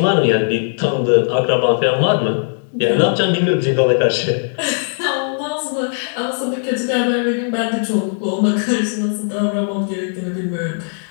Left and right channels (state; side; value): silent; right; digital silence